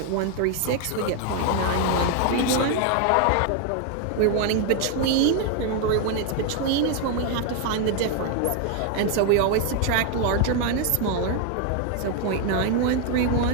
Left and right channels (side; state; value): both; different; correlation 0.01